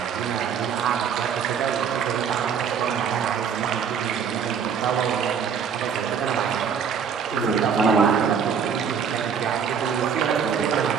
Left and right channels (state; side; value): quieter; left; 7.0 dB